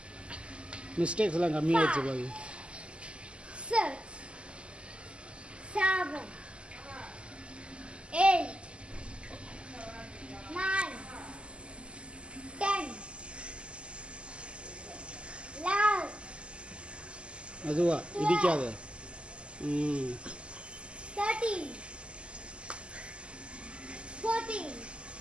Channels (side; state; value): left; late; 0.053 ms